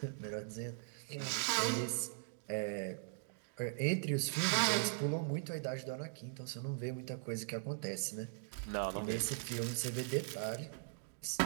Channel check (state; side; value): silent; left; digital silence